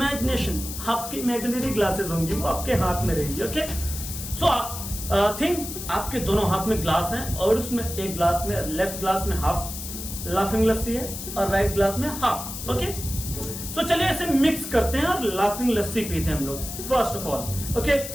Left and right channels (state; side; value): noise; left; hiss, 8 dB below the sound